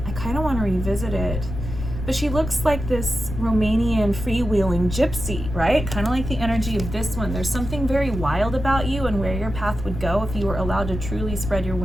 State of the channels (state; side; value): noise; left; rumble, 7 dB below the sound